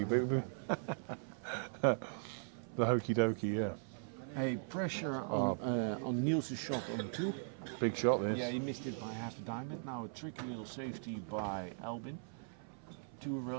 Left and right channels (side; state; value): left; silent; 52 dB below the other